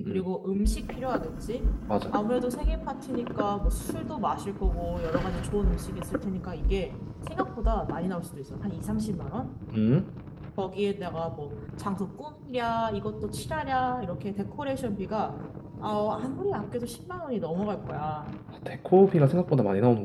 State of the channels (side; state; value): both; identical; correlation 1.00